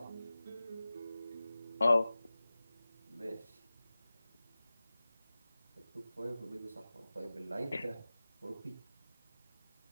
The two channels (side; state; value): both; inverted; correlation -0.97